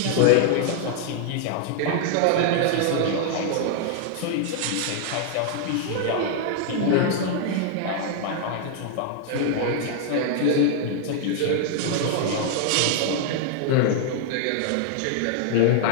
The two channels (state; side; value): different; both; correlation 0.00